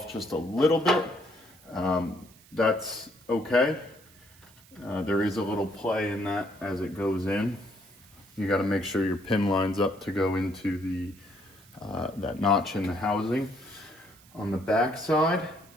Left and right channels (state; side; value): noise; right; hiss, 25 dB below the sound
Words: just a little bit, that's okay. There is a little play in that as it goes in. You gotta make sure your pin lines up to go into the that notch in the housing on the back side.